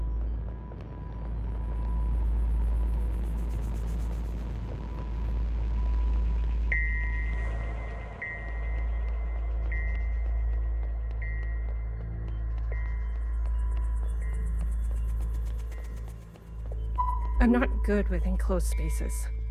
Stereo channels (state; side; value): identical; both; correlation 1.00